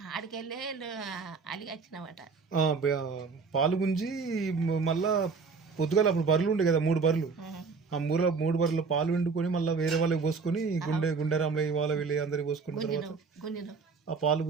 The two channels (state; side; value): quieter; left; 4.9 dB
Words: ఆడికి వెళ్ళి అలిగి వచ్చినామట. పాలు గుంజి మళ్ళా పొద్దుగాల అప్పుడు బర్రెలు ఉండే కదా 3 బర్రెలు. ఆ 3 బర్రెలు పాలు వండుకొని మళ్ళీ వేరే వాళ్ళకి పోసుకొని గుండె రామలయ్య వాళ్ళ వీళ్ళు అందరికి పోసుకున్న తర్వాత ఆ పాలు